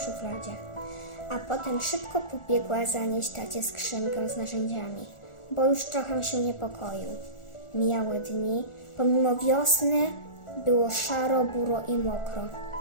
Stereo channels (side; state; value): right; late; 1.4 ms